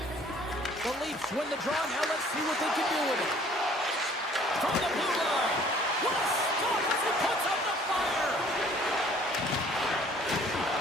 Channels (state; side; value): normal; both; correlation 0.55